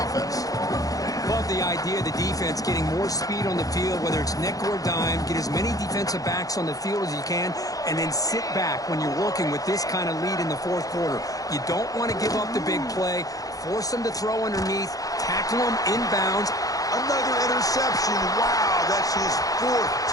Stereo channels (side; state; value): right; late; 0.17 ms